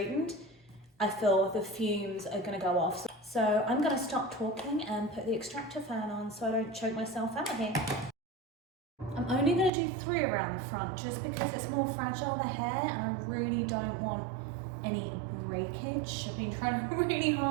I feel the fumes are going to go off. So I'm going to stop talking and put the extractor fan on so I don't choke myself out here. I'm I'm only going to do 3 around the front just because it's more fragile, the hair, and I really don't want any breakage. I've been trying really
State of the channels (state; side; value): drops out; left; at 9.7 s